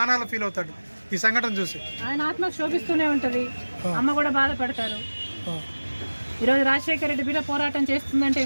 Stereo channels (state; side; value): inverted; both; correlation -1.00